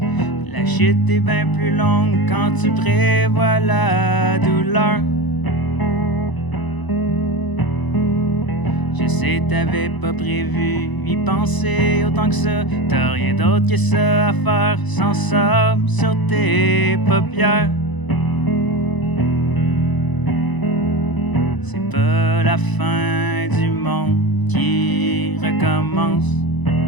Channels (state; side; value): late; right; 1.0 ms